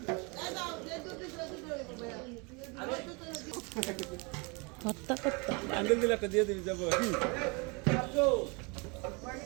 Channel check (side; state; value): left; quieter; 30.1 dB